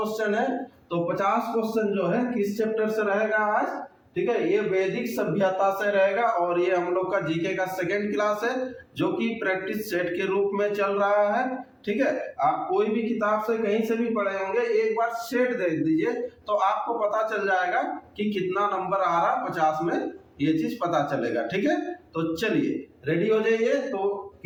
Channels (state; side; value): identical; both; correlation 1.00